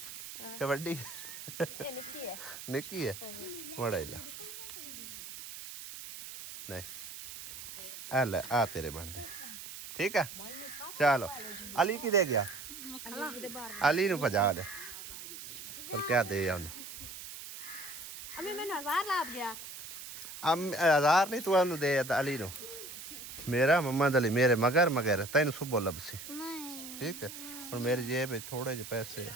क्या बड्डी निक्की है बड़ा ला नहीं अल्लाह आ तेरे बन दे ठीक है चलो अली की दे गया अली नु भजा दे पर क्या दे उन्हें अभी मैंने 1000 लाभ गया हजार नहीं तू ਉਹਨੂੰ ਦੇ ਅਲੀ ਨੂੰ ਮੇਰਾ ਮੁਹੰਮਦ ਅਲੀ ਮੇਰੇ ਮਗਰ ਤੈਨੂੰ ਸੁਬੋ ਲੱਭਸੀ नहीं ਠੀਕ ਹੈ ਹੁਣ ਮੇਰੀ ਜੇਬ ਵਿੱਚ ਥੋੜੇ ਜਿਹੇ ਪੈਸੇ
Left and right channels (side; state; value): right; noise; hiss, 11 dB below the sound